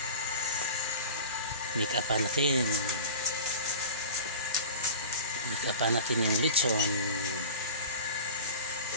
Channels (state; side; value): inverted; both; correlation -0.36